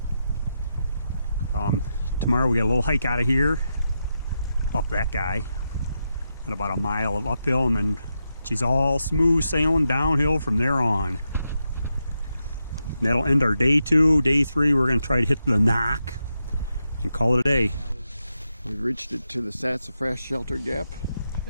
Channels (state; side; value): inverted; both; correlation -0.86